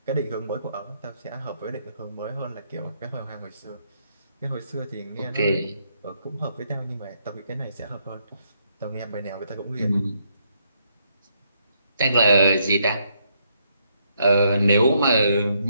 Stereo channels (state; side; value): inverted; both; correlation -0.75